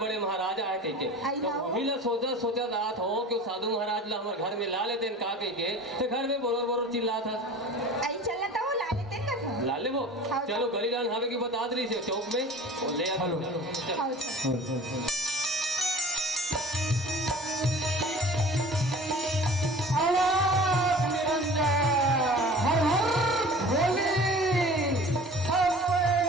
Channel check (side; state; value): both; normal; correlation 0.42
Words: महाराज आए कह के। तो वही ला सोचा दात हो कि साधु महाराज ला हमारे घर में ला लेते का कह के तो घर में बोरोर बोरोर चिल्ला था। आई चलना था वो ला लेते ना ला ले वो चलो गली डान हावे की बता रही से चौक में और ले आ